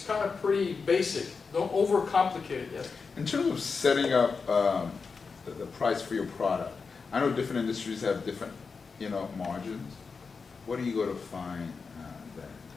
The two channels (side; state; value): right; quieter; 5.0 dB